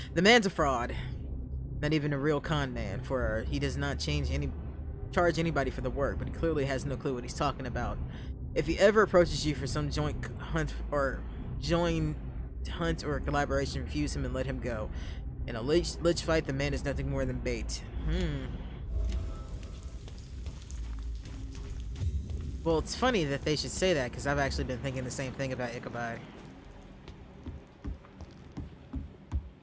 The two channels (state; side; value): identical; both; correlation 1.00